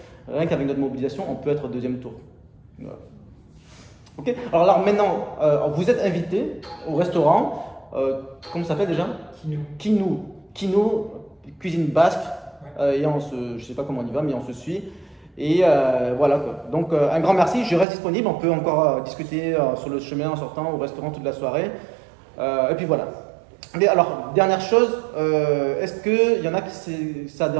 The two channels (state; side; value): drops out; left; at 17.9 s